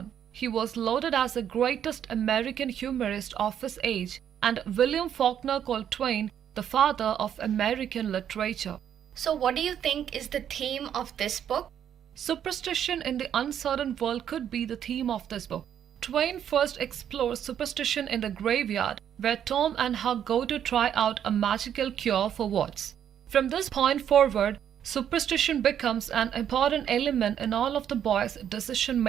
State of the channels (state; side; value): quieter; left; 9.4 dB